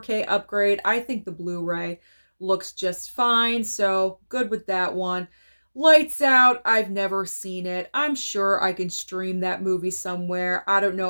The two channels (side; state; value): both; inverted; correlation -1.00